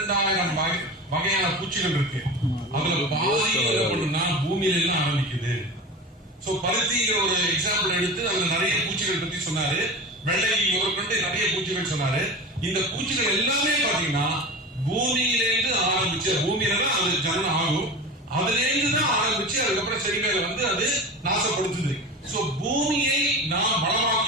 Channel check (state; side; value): normal; both; correlation 0.30